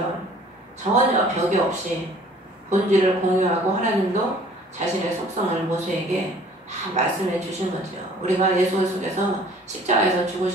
전혀 벽이 없이 본질을 공유하고 하나님도 자신의 속성을 모세에게 다 말씀해 주신 거죠. 우리가 예수 속에서 십자가에서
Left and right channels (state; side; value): normal; both; correlation 0.53